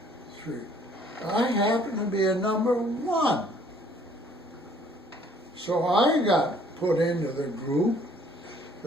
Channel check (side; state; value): both; normal; correlation 0.59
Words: 3. I happen to be a number 1. So I got put into the group